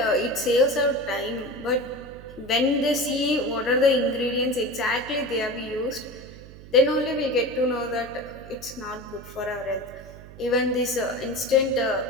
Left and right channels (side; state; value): right; noise; hum, 17 dB below the sound